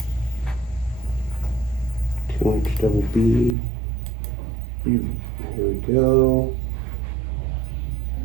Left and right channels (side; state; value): left; drops out; at 3.6 s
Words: Two-inch double B. Here we go.